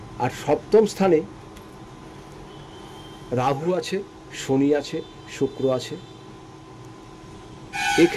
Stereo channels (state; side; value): identical; both; correlation 1.00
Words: আর সপ্তম স্থানে রাহু আছে, শনি আছে, শুক্র আছে।